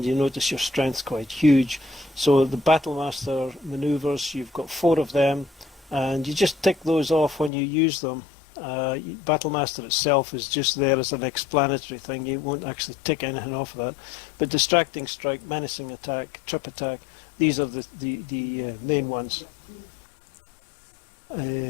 you notice your strength's quite huge. So the Battlemaster maneuvers, you've got 4 of them, and you just tick those off when you use them. Battlemaster itself is just there as an explanatory thing. You won't actually tick anything off of that. But Distracting Strike, Menacing Attack, Trip Attack, these are the main ones.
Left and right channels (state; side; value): drops out; right; at 7.5 s